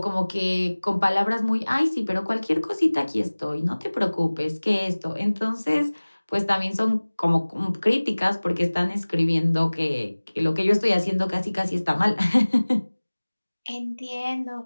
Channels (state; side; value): inverted; both; correlation -1.00